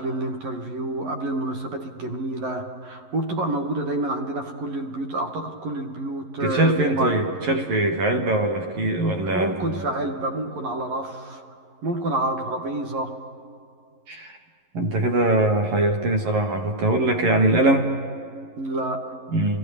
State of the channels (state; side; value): late; left; 11 ms